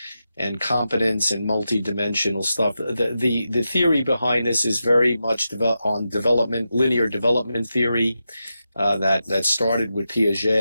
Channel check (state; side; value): inverted; both; correlation -0.89